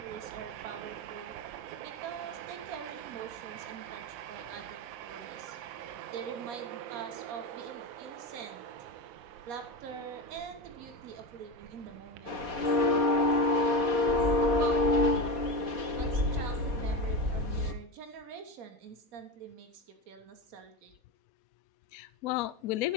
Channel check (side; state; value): left; late; 4.2 ms